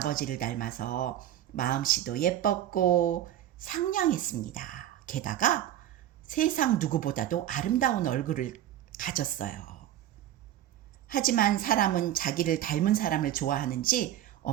닮아서 마음씨도 예뻤고 상냥했습니다. 게다가 세상 누구보다도 아름다운 얼굴을 가졌어요. 하지만 사람은 자기를 닮은 사람을 좋아하는지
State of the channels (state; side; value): quieter; left; 12.2 dB